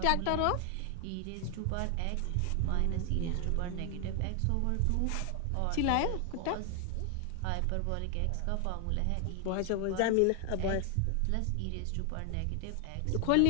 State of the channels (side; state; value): both; different; correlation 0.00